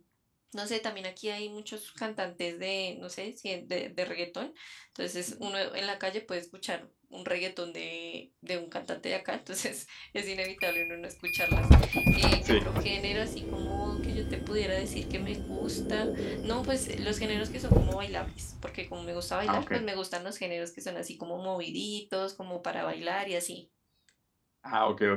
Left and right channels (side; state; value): both; identical; correlation 1.00